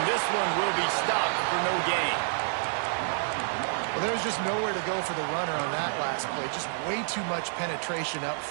this one will be stopped for no gain. Well, there's just nowhere to go for the runner on that last play. Just way too much penetration up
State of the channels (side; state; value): left; silent; digital silence